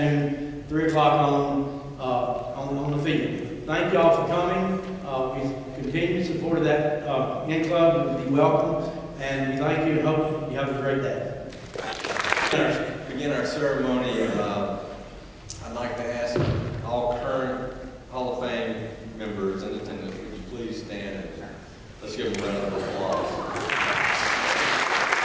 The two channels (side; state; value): both; identical; correlation 1.00